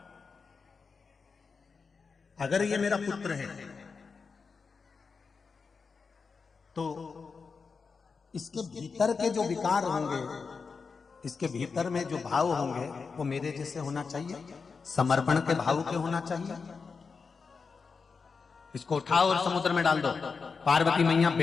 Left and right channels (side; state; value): right; quieter; 5.1 dB